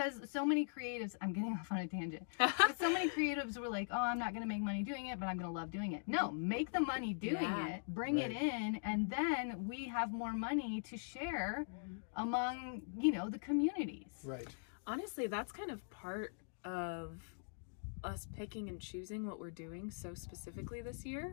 so many creatives, I'm getting off on a tangent, but so many creatives were like, oh, I'm not going to make money doing it, but I'm going to love doing it. No, make the money doing it, bring it in, and then we have more money to share among, you know, the communities. Honestly, that's kind of part of us picking and choosing what we're doing so specifically this year,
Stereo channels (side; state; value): right; silent; digital silence